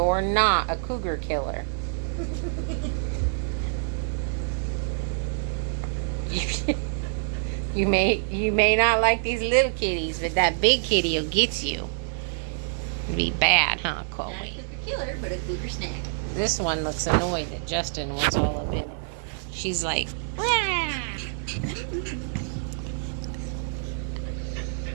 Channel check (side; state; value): left; silent; digital silence